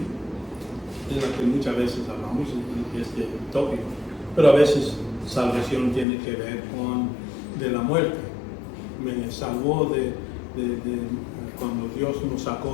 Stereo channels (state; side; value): drops out; right; at 6.1 s